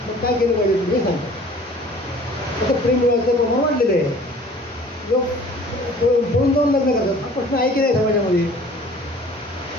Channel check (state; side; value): normal; both; correlation 0.49